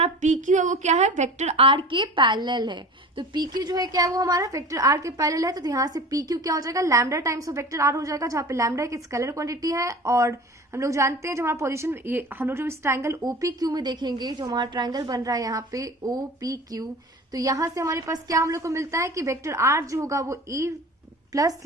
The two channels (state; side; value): normal; both; correlation 0.38